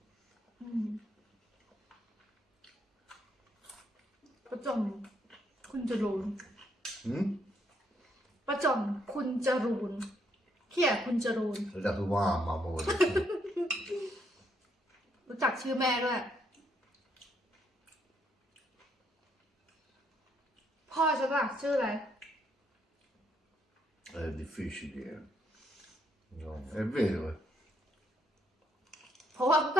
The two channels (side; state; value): both; normal; correlation 0.73